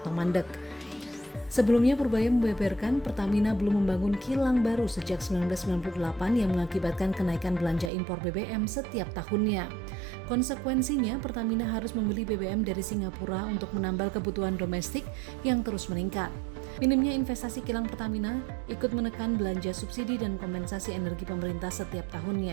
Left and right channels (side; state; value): left; drops out; at 7.9 s